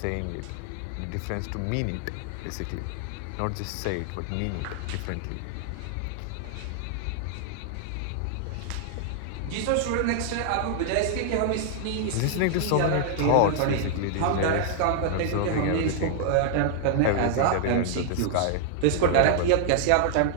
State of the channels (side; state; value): both; different; correlation -0.01